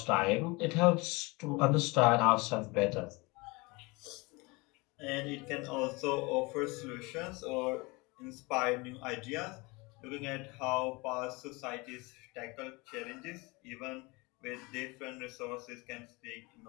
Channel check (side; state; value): right; quieter; 25.6 dB